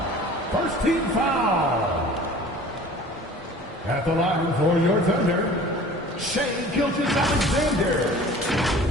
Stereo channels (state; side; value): normal; both; correlation 0.44